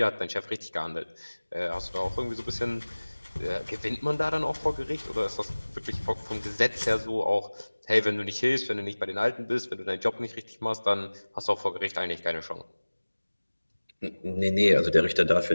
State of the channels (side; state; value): both; inverted; correlation -1.00